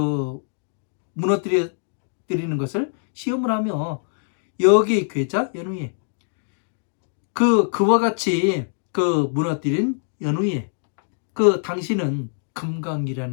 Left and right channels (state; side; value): silent; right; digital silence